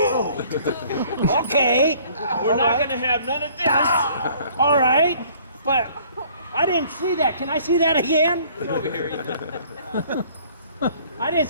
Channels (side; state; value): both; inverted; correlation -0.56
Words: Okay. We're not going to have none of this. All right, but I didn't see that. Can I see that again? Get over here, Ethan. I didn't